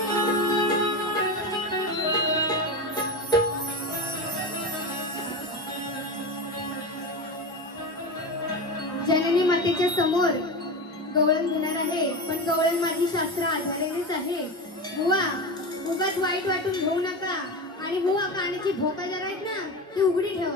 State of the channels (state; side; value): normal; both; correlation 0.23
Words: जननी मातेच्या समोर गवळण घेणार आहे पण गवळण माझी शास्त्र आधारेनेच आहे बुवा उगाच वाईट वाटून घेऊ नका आणि बुवा कानाची भोका जरा आहेत ना ती उघडी